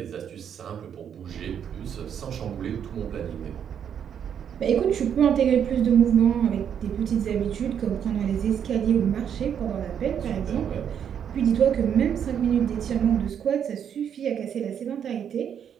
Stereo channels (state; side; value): quieter; left; 8.5 dB